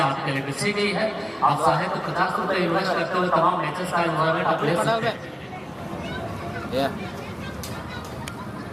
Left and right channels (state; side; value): identical; both; correlation 1.00